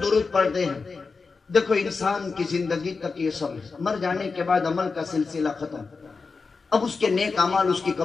درود پڑھتے ہیں۔ دیکھو انسان کی زندگی تک یہ سب ہے، مر جانے کے بعد عمل کا سلسلہ ختم، اب اس کے نیک اعمال اس کی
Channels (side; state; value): right; quieter; 4.5 dB